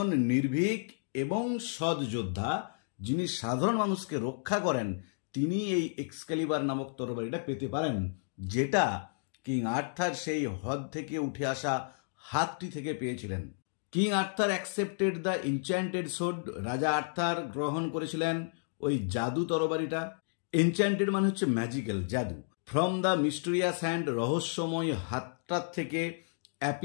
নির্ভীক এবং সৎ যোদ্ধা যিনি সাধারণ মানুষকে রক্ষা করেন, তিনি এই এক্সক্যালিবার নামক তরবারিটা পেতে পারেন, যেটা কিং আর্থার সেই হ্রদ থেকে উঠে আসা হাতটি থেকে পেয়েছিলেন। King Arthur accepted the enchanted sword, রাজা আর্থার গ্রহণ করেছিলেন ওই জাদু তরবারিটা। এনচ্যান্টেড মানে হচ্ছে ম্যাজিক্যাল, জাদু। ফ্রম দ্য মিস্টেরিয়াস হ্যান্ড, রহস্যময় হাতটার থেকে।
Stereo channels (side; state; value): right; silent; digital silence